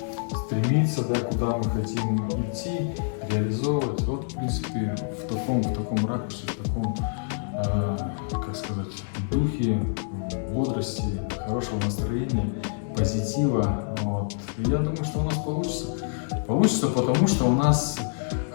стремиться, да, куда мы хотим идти, реализовывать. Вот, в принципе, в таком ракурсе, в таком, как сказать, духе, бодрости, хорошего настроения, позитива. Вот. И я думаю, что у нас получится. Получится, потому что у нас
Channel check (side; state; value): right; silent; digital silence